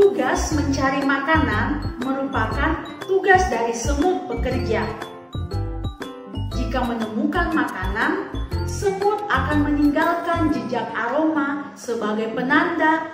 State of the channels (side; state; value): both; identical; correlation 1.00